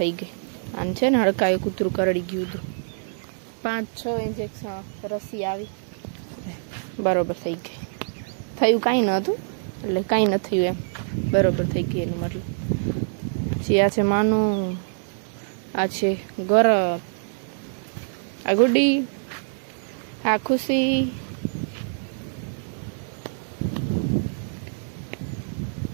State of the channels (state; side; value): silent; left; digital silence